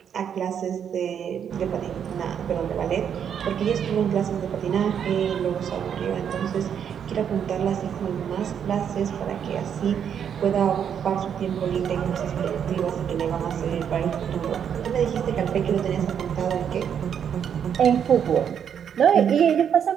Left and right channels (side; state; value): left; quieter; 8.3 dB